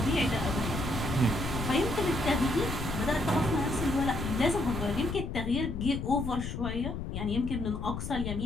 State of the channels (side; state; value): left; noise; rumble, 5 dB below the sound